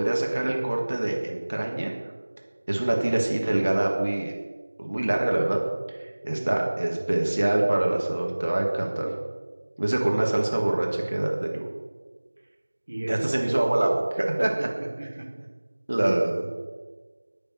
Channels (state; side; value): inverted; both; correlation -1.00